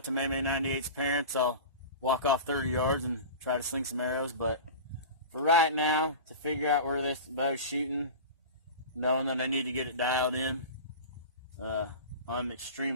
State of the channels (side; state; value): both; inverted; correlation -0.31